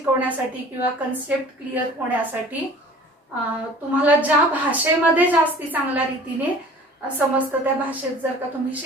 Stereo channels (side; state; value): both; normal; correlation 0.46